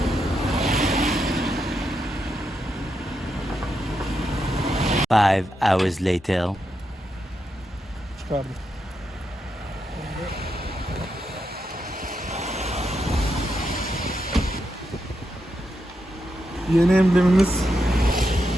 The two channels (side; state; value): both; normal; correlation 0.84